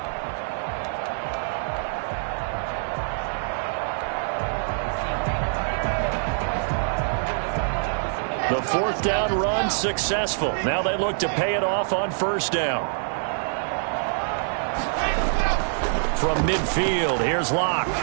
The 4th down run successful. Now they look to pay it off on 1st down. From midfield, here's Locke.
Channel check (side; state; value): left; silent; digital silence